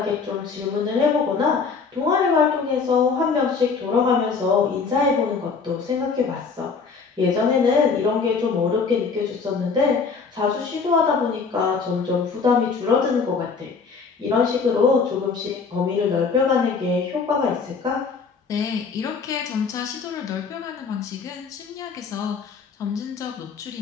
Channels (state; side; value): quieter; right; 5.1 dB